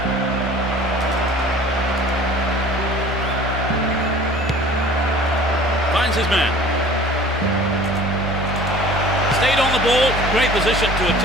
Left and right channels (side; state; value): both; normal; correlation 0.47